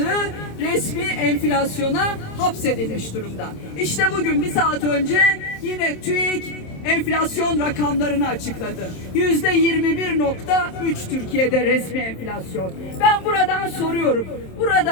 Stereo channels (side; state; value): right; late; 27 ms